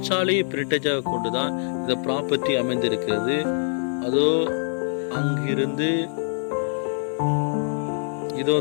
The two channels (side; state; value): right; silent; digital silence